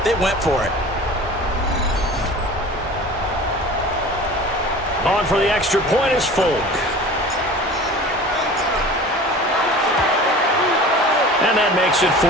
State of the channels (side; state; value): both; normal; correlation 0.40